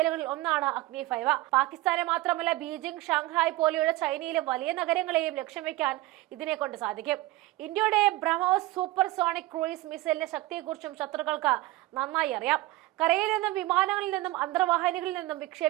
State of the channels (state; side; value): quieter; left; 18.5 dB